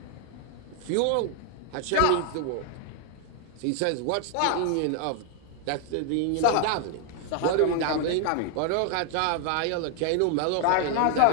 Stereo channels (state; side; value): different; both; correlation 0.00